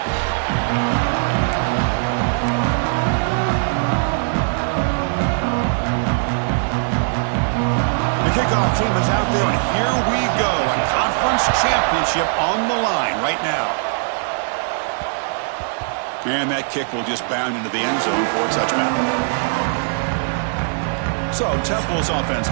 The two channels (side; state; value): left; silent; 66 dB below the other